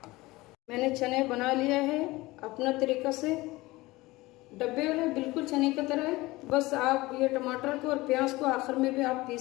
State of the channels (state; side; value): quieter; right; 20.4 dB